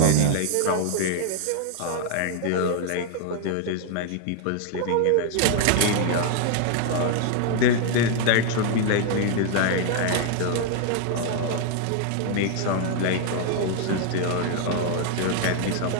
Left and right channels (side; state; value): both; different; correlation 0.00